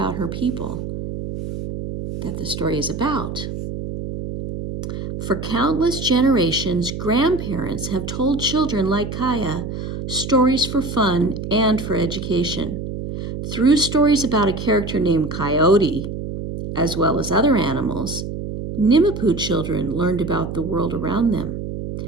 her people that the story is about. For countless generations, grandparents have told children like Kaya stories for fun and for education. Through stories about a character named Coyote, as well as other animals, Nimapoo children learned about the world around them,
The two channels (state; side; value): noise; right; hum, 6 dB below the sound